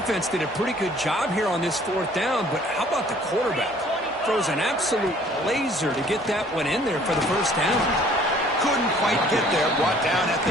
did a pretty good job here on this 4th down, but how about the quarterback? Throws an absolute laser to get that one in there for the 1st down. Couldn't quite get there. Brought down at the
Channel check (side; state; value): both; normal; correlation 0.56